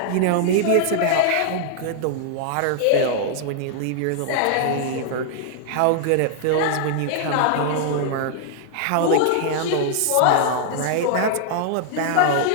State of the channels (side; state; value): both; different; correlation -0.01